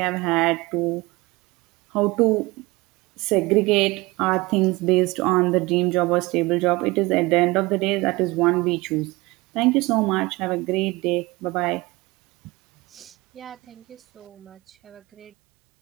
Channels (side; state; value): left; quieter; 22.3 dB